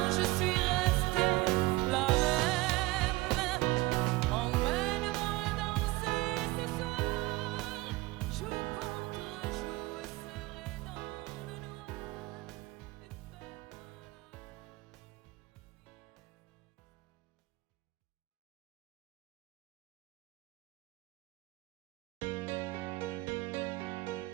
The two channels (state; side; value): quieter; left; 20.5 dB